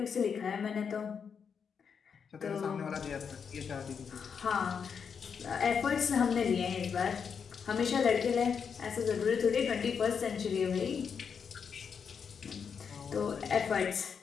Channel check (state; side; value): quieter; right; 6.6 dB